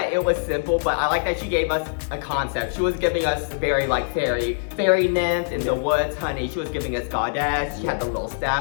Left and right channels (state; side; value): silent; right; digital silence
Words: it was simple, but I like that she gave us a concept. She was giving us very like fairy nymph in the woods, honey. She was giving us goddess. She had the little